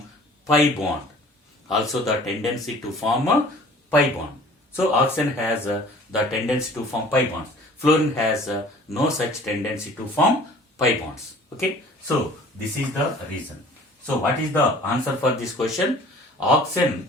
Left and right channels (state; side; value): normal; both; correlation 0.48